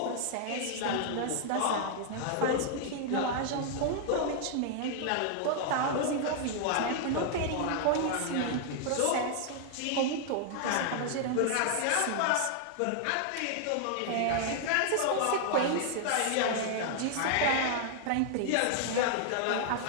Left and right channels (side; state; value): both; different; correlation -0.01